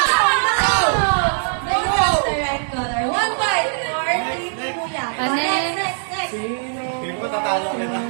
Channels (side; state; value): left; silent; digital silence